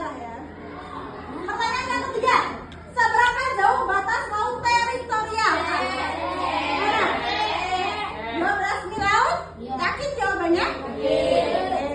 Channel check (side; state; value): both; identical; correlation 1.00